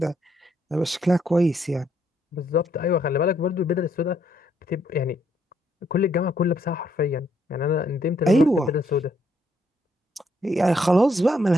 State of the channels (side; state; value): both; normal; correlation 0.72